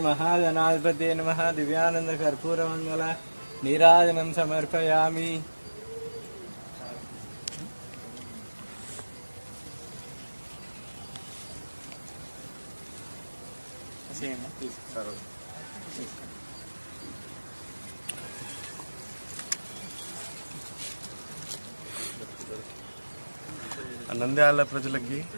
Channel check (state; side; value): inverted; both; correlation -1.00